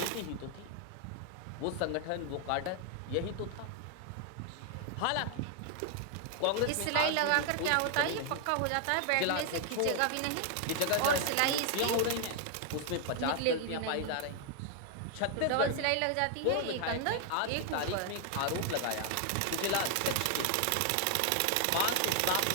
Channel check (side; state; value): both; different; correlation 0.00